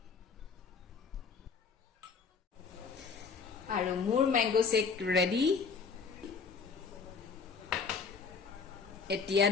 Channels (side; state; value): right; quieter; 5.3 dB